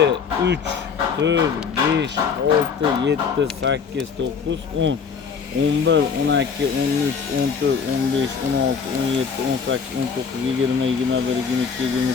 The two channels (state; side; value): quieter; right; 6.1 dB